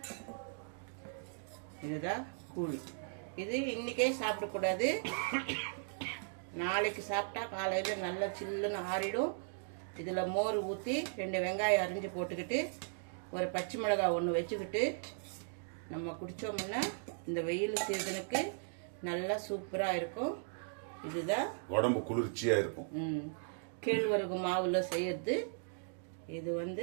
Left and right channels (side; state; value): left; silent; digital silence